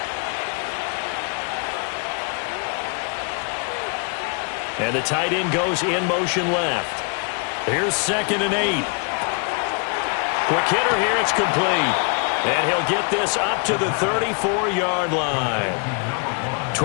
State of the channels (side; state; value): right; quieter; 37.9 dB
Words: And the tight end goes in motion left. Here's 2nd and 8. Quick hitter here, it's complete. And he'll get this up to the 34-yard line.